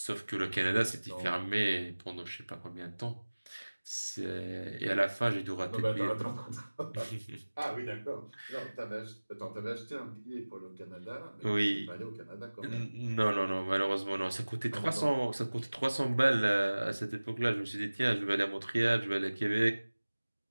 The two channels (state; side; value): inverted; both; correlation -1.00